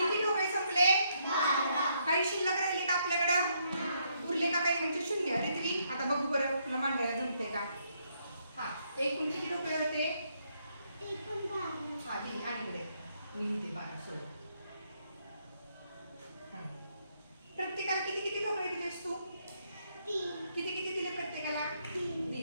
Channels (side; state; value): both; inverted; correlation -0.74